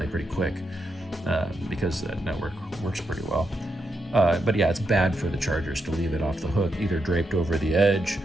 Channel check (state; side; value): normal; both; correlation 0.83